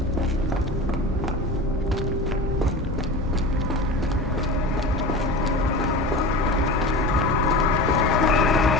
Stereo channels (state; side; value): noise; left; hum, 9 dB below the sound